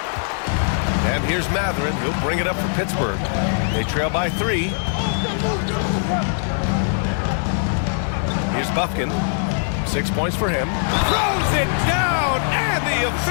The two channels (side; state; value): right; silent; digital silence